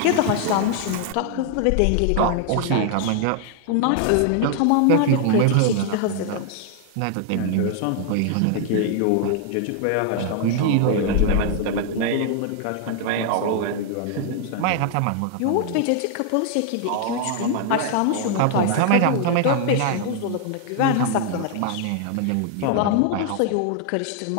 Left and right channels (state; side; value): different; both; correlation 0.00